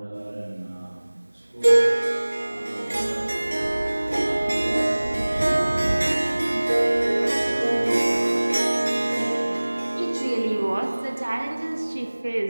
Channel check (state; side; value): inverted; both; correlation -1.00